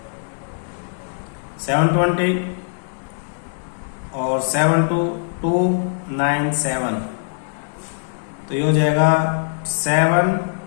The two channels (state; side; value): silent; right; digital silence